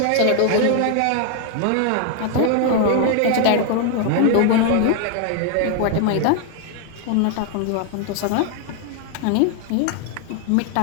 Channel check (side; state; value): both; different; correlation 0.00